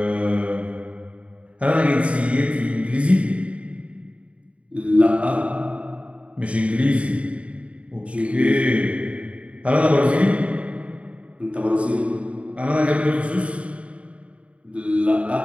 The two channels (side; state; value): left; late; 0.063 ms